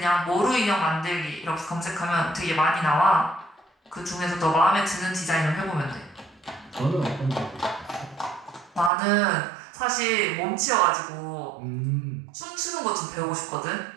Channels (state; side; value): drops out; left; at 8.9 s